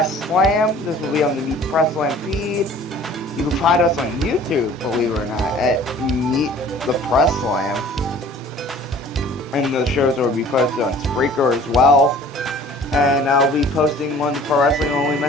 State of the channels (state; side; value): normal; both; correlation 0.49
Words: Slam. This will be on the Meet Press Slam feed. You can find us on YouTube, believe it or not, at Meet the Press Slam. And the shows will be posted on Spreaker as well. And I'll be posting on the Pro Wrestling Only